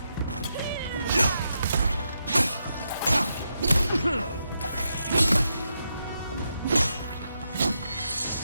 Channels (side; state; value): both; inverted; correlation -0.84